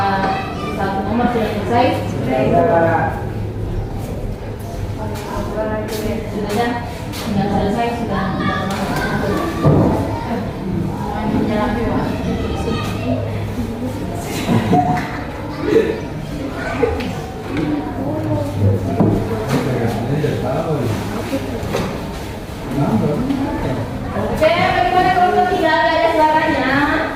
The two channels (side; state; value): both; identical; correlation 1.00